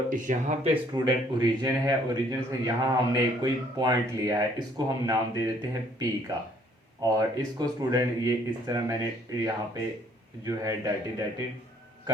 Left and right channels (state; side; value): normal; both; correlation 0.62